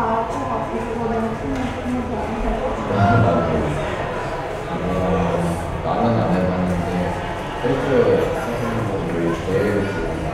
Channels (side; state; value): both; identical; correlation 1.00